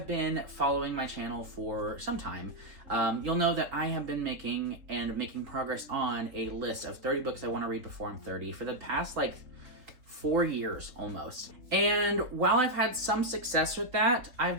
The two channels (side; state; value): left; late; 3.7 ms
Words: been following my channel for some time, you'll know that I have been making progress on a list of 30 books I want to read before I'm 30 for the past 4 years almost. And while I've had some success with that, I've